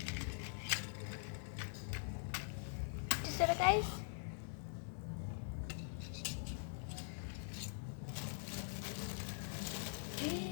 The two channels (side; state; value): right; silent; digital silence